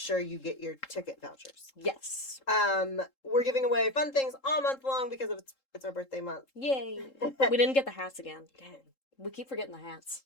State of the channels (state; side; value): late; right; 3.7 ms